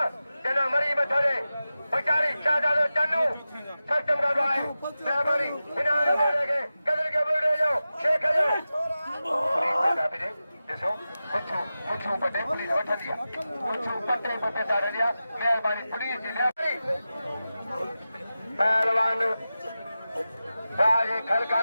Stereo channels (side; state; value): both; inverted; correlation -0.94